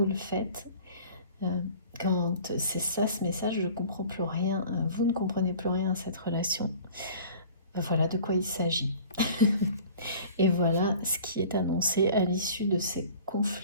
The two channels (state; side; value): inverted; both; correlation -0.45